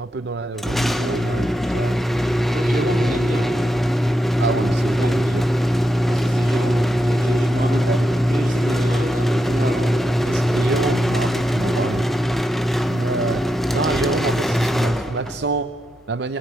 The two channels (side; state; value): both; normal; correlation 0.85